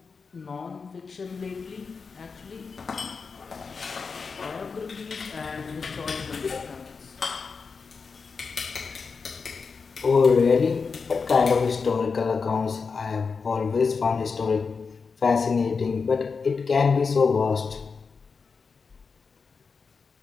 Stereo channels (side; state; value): right; quieter; 5.1 dB